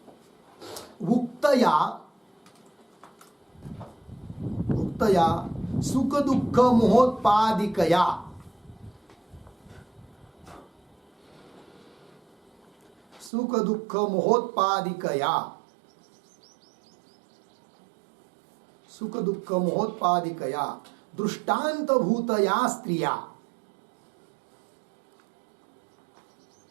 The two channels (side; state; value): left; drops out; at 13.3 s